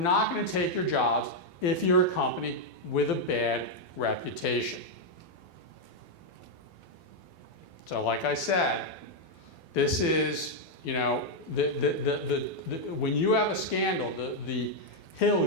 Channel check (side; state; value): right; late; 12 ms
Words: going to take your jobs if you're a company with a bad reputation. So like I said, this is, you know, when you have a scandal, the hill